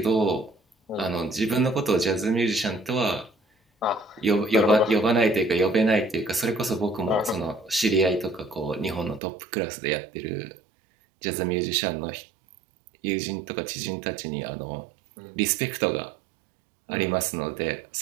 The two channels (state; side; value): drops out; left; at 9.2 s